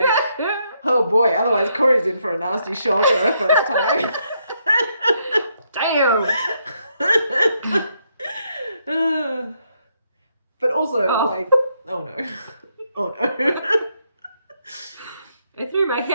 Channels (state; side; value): inverted; both; correlation -0.76